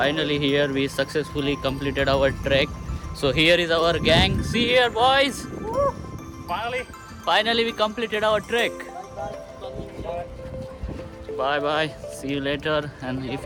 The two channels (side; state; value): both; identical; correlation 1.00